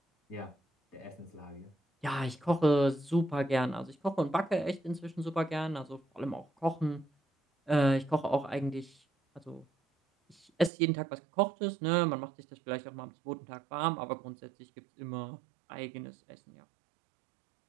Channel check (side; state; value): left; drops out; at 10.7 s